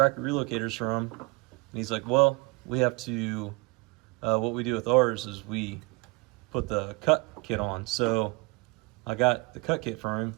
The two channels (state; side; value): quieter; left; 27.6 dB